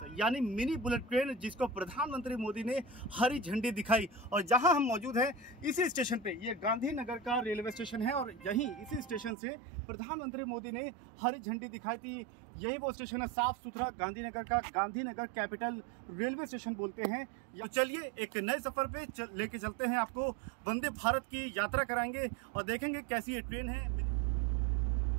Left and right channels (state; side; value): drops out; left; at 9.3 s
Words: यानी मिनी बुलेट ट्रेन, जिसको प्रधानमंत्री मोदी ने हरी झंडी दिखाई। और जहाँ हम मौजूद हैं इसी स्टेशन पे, ये गांधीनगर का रेलवे स्टेशन है और यहीं इसी स्टेशन से प्रधानमंत्री मोदी ने हरी झंडी दिखाई थी। यही वो स्टेशन है, साफ सुथरा गांधीनगर का, गांधीनगर कैपिटल रेलवे स्टेशन बोलते हैं। तो चलिए एक नए सफर पे लेके चलते हैं, आपको वंदे भारत की यात्रा कराएंगे और देखेंगे कैसी ये ट्रेन है।